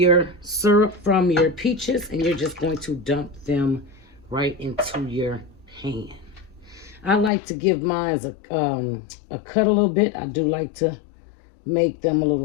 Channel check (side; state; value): right; drops out; at 7.3 s